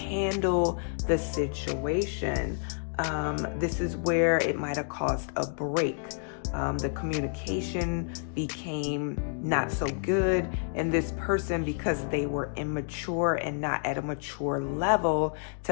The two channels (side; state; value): right; silent; digital silence